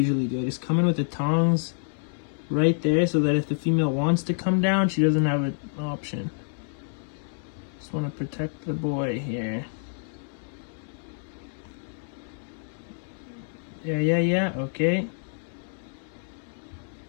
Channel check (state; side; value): silent; right; 60 dB below the other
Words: do. I just come in with the tongs right there so that if the female wants to come down, she doesn't have an option. Just want to protect the boy here. Yeah. Okay.